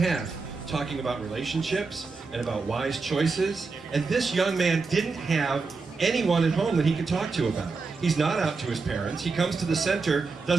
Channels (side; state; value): left; quieter; 4.3 dB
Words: talking about relationships and about wise choices. And this young man didn't have anyone at home that he could talk to about. He's not out to his parents. He comes to the center,